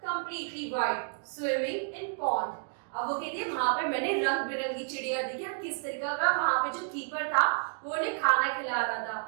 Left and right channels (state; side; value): silent; left; 57 dB below the other